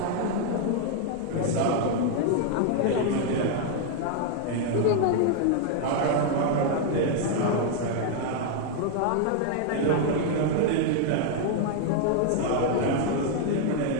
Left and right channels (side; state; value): both; different; correlation 0.00